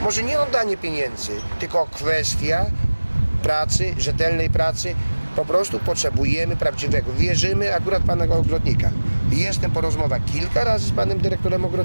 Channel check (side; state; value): both; inverted; correlation -1.00